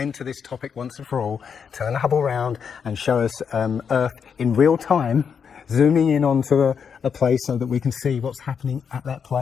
to this topic once and for all, turn Hubble around and show us Earth in real time, zooming in onto a place so that we can see what's happening at that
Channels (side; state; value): right; quieter; 6.8 dB